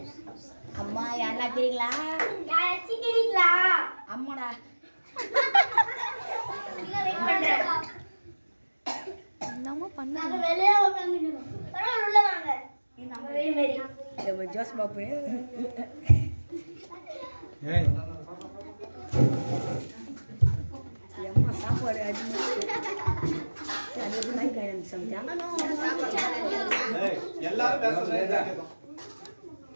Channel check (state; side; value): inverted; both; correlation -1.00